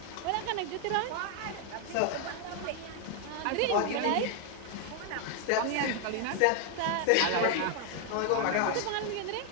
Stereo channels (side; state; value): both; different; correlation 0.00